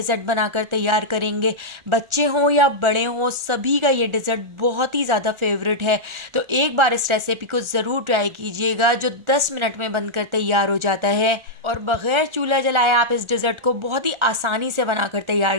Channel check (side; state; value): left; late; 1.4 ms